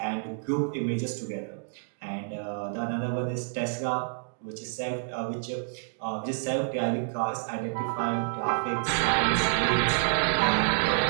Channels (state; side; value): silent; left; digital silence